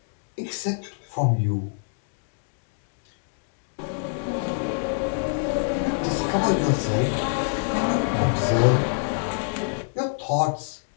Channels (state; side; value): silent; right; digital silence